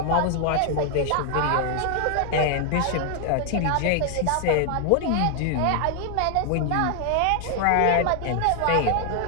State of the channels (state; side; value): different; both; correlation 0.00